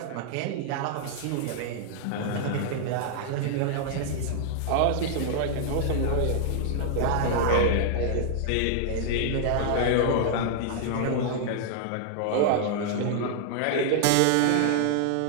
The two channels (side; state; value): both; different; correlation -0.01